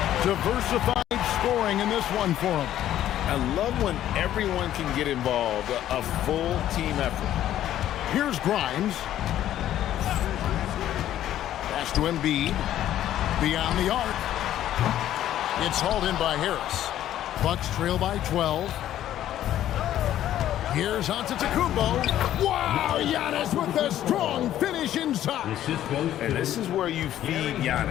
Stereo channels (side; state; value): right; quieter; 12.2 dB